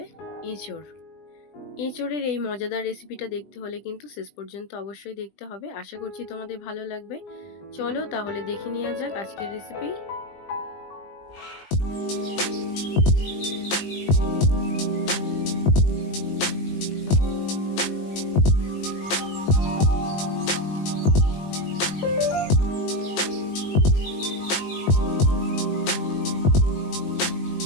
এঁচোড়। এঁচোড়ের এই মজাদার রেসিপিটা দেখতে হলে কিন্তু শেষ পর্যন্ত অবশ্যই দেখতে হবে। আশা করছি তোমাদের ভালো লাগবে। চলো তাহলে দেখে নেওয়া যাক আজকের রেসিপি।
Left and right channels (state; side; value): late; right; 20 ms